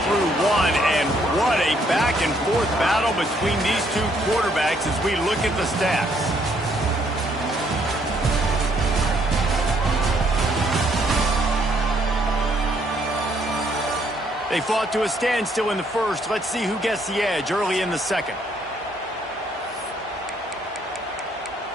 through one, and what a back-and-forth battle between these two quarterbacks as we look at the stats. They fought to a standstill in the first. Let's see who gets the edge early in the second.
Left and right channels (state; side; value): normal; both; correlation 0.68